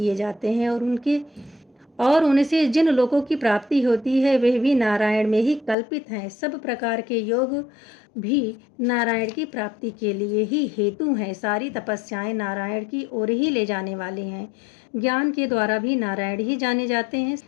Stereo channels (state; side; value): drops out; right; at 5.8 s